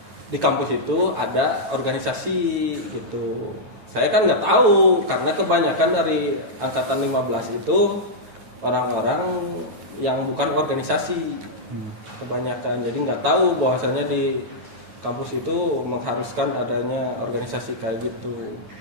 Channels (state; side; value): late; left; 9.1 ms